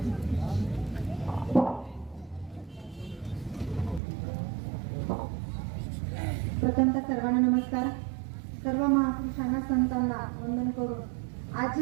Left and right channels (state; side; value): drops out; left; at 4.0 s